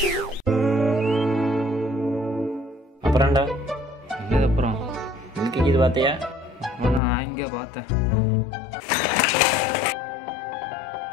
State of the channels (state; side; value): drops out; right; at 7.0 s